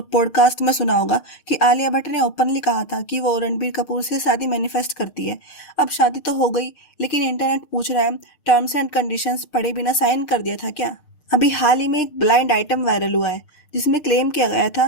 पॉडकास्ट में सुना होगा कि आलिया भट्ट ने ओपनली कहा था कि वो रणबीर कपूर से शादी मैनिफेस्ट करती है। अब शादी तो हो गई, लेकिन इंटरनेट पूछ रहा है, टर्म्स एंड कंडीशंस पढ़े बिना साइन कर दिया था क्या? अभी हाल ही में एक ब्लाइंड आइटम वायरल हुआ है जिसमें क्लेम किया गया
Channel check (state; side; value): late; right; 6.6 ms